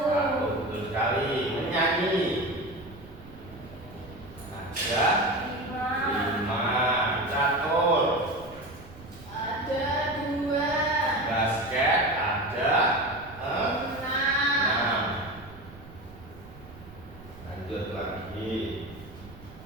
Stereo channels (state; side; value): noise; right; rumble, 18 dB below the sound